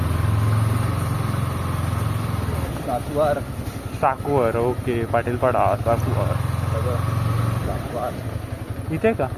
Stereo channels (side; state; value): both; identical; correlation 1.00